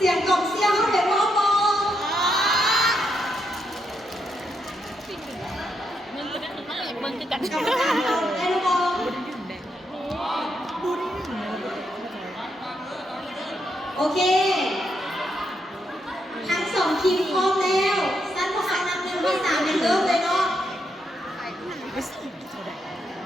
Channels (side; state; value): both; normal; correlation 0.80